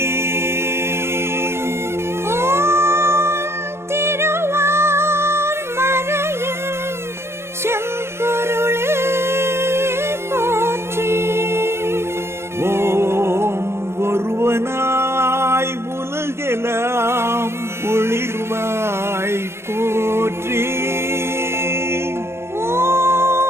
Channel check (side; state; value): left; late; 0.12 ms